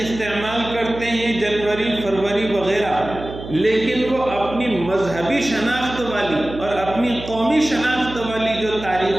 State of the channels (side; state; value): right; noise; hum, 11 dB below the sound